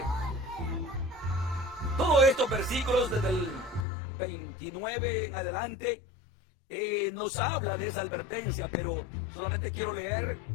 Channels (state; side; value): drops out; right; at 3.9 s